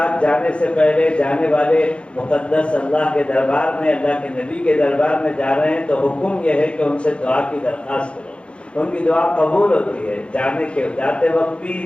جانے سے پہلے جانے والے مقدس اللہ کے دربار میں، اللہ کے نبی کے دربار میں جا رہے ہیں تو حکم یہ ہے کہ ان سے دعا کی درخواست کرو، ان کی دعا قبول ہوتی ہے، جاتے وقت بھی،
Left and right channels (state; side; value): late; right; 0.058 ms